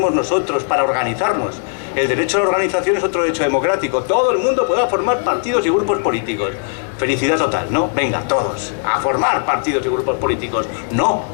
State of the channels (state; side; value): silent; right; 68 dB below the other